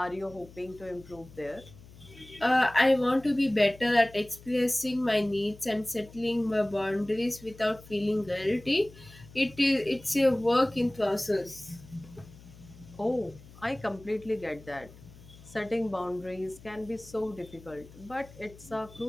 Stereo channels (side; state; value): left; noise; hum, 20 dB below the sound